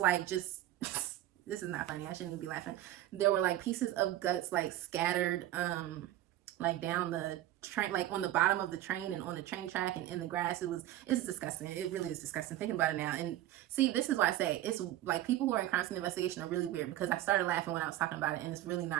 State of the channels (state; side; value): quieter; left; 13.9 dB